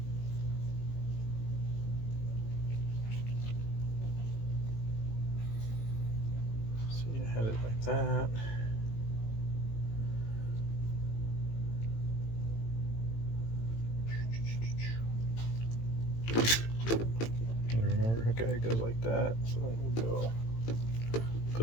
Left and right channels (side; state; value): right; late; 18 ms